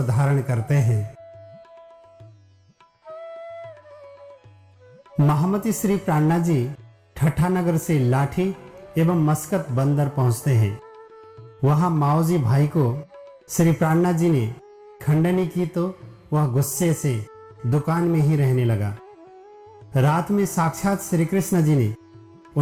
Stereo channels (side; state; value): both; identical; correlation 1.00